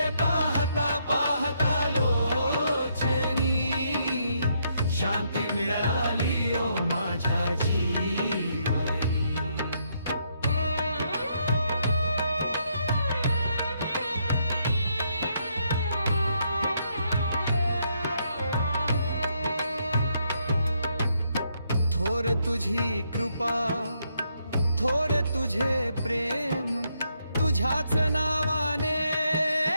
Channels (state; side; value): inverted; both; correlation -0.75